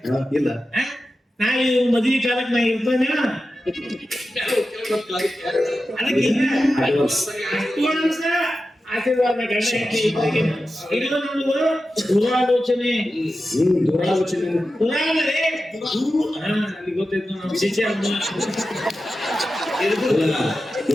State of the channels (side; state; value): both; normal; correlation 0.92